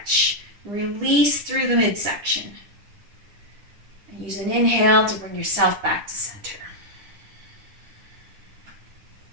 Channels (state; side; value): late; left; 9.9 ms